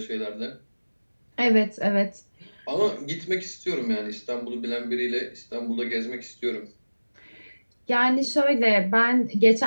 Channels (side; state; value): both; inverted; correlation -1.00